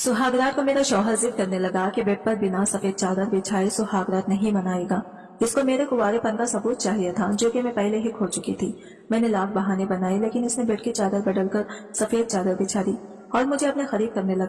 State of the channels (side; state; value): both; identical; correlation 1.00